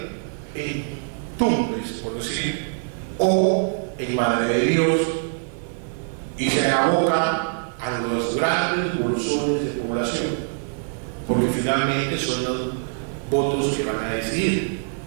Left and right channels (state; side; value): silent; left; digital silence